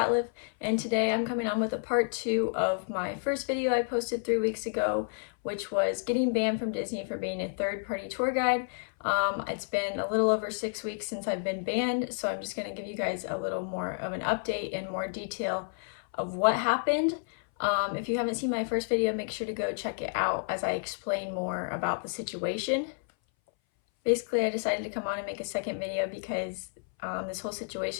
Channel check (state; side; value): silent; right; 58 dB below the other